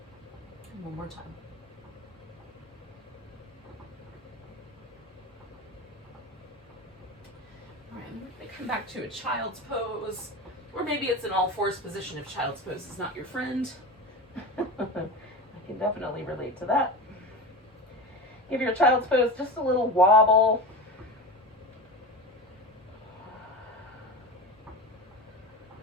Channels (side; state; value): both; normal; correlation 0.27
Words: And one more time. All right, and we're going to come back to a child's pose, or maybe it's an all-fours position if child's pose is not your friend. I can definitely relate to that. Give your child's pose just a little wobble.